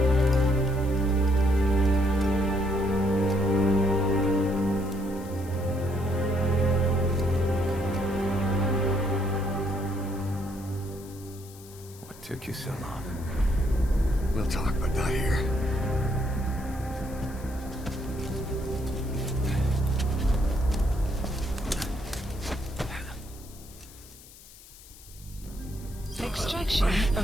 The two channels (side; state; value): left; noise; hiss, 20 dB below the sound